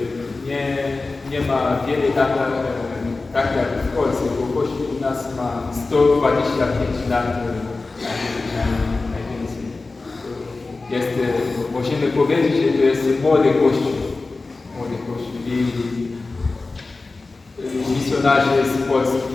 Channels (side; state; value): right; quieter; 3.6 dB